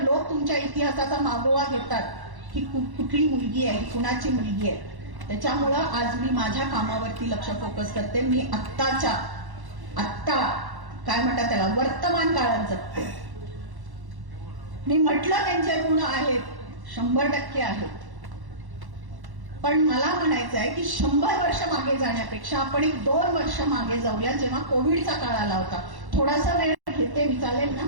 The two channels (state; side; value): late; left; 1.1 ms